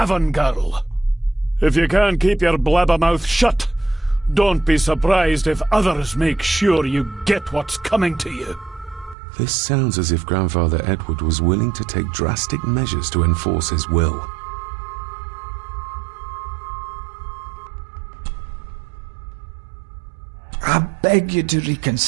girl. If you can't keep your blabbermouth shut, don't be surprised if others make sure you get what's coming to you. This sounds as if Grandfather Edward was willing to take drastic measures to enforce his will. I beg you to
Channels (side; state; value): left; drops out; at 9.2 s